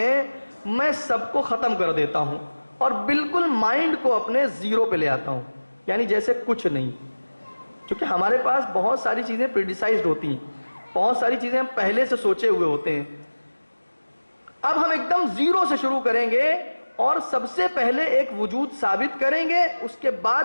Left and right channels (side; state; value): both; inverted; correlation -1.00